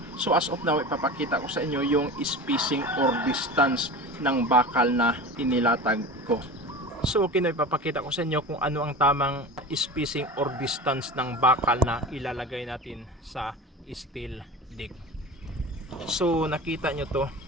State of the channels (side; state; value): both; normal; correlation 0.32